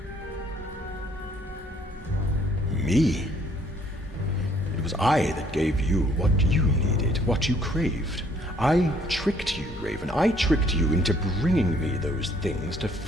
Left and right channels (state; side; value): normal; both; correlation 0.63